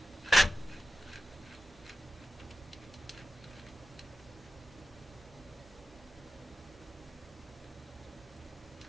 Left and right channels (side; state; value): both; normal; correlation 0.92